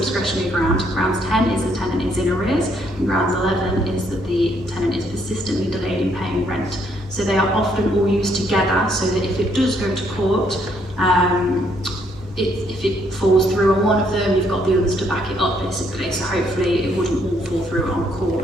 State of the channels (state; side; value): normal; both; correlation 0.70